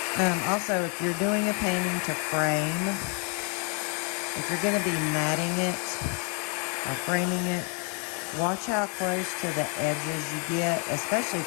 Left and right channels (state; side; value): quieter; right; 37.8 dB